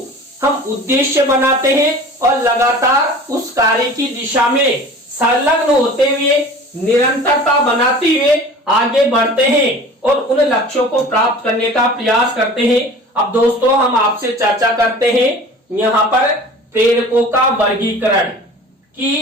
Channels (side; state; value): both; normal; correlation 0.41